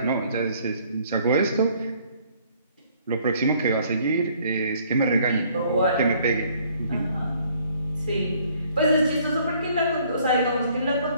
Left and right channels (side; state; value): both; inverted; correlation -0.61